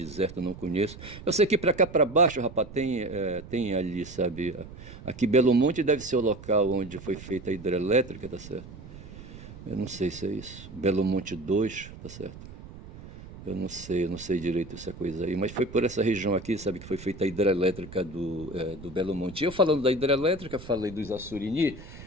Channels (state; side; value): noise; right; rumble, 15 dB below the sound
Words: não conheço. Eu sei que para cá para baixo, rapaz, tem ali, sabe, aqui Belo Monte deve ser o local onde foi feita a hidrelétrica, tá certo? Eu não sei se é isso. Belo Monte 2, tá certo? Eu não sei direito essa coisa aí, mas foi por essa região aqui, sabe, que foi feita a hidrelétrica do Belo Monte. Eu falando da hidrelétrica, falei dos Assurini,